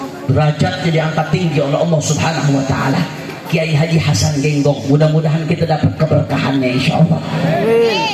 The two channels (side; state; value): both; identical; correlation 1.00